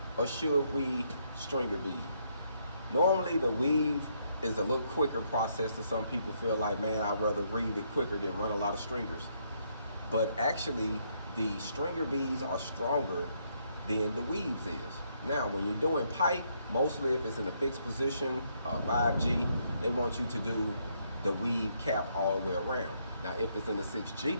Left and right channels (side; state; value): both; inverted; correlation -0.74